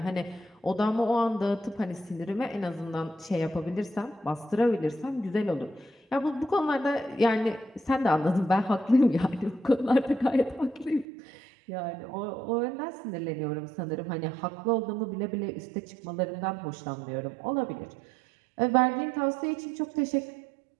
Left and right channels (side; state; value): left; drops out; at 11.1 s